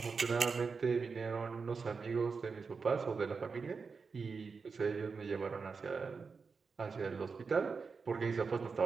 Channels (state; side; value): quieter; left; 5.0 dB